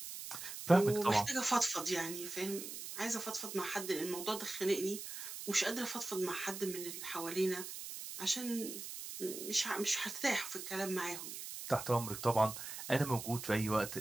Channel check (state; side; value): noise; right; hiss, 8 dB below the sound